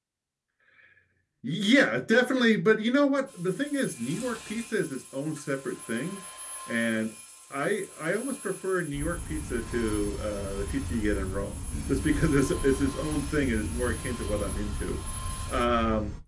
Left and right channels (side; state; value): both; identical; correlation 1.00